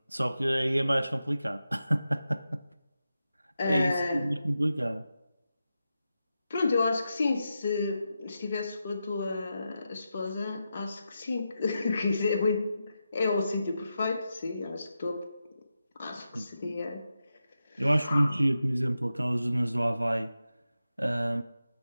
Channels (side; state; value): both; inverted; correlation -0.89